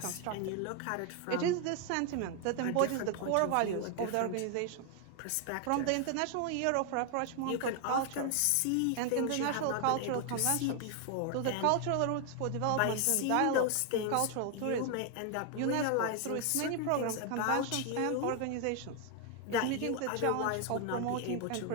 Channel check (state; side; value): different; both; correlation 0.00